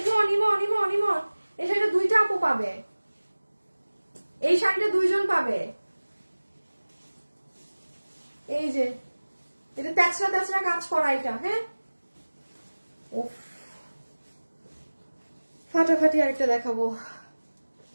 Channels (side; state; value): both; inverted; correlation -1.00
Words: ইমন ইমন ইমন, এই শাড়িটা দুইটা আপু পাবে, এই শাড়িটা দুইজন পাবে। এই যে এটা তেচরা তেচরা কাজ করা এটা, হ্যাঁ উফ ফাটাফাটি। আরেকটা দেখাবো,